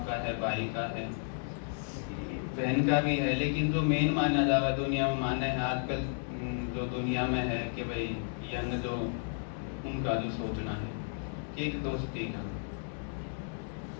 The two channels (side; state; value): right; silent; digital silence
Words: का है, भाई का है, बहन का भी है, लेकिन जो मेन माना जावा दुनिया में माना है आजकल जो दुनिया में है कि भाई यंग जो उनका जो सोचना है कि एक दोस्ती का,